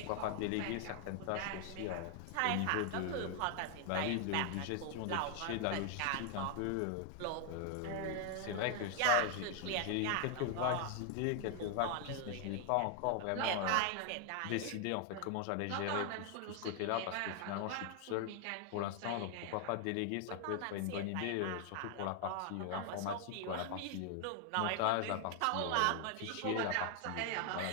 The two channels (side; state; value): both; different; correlation 0.00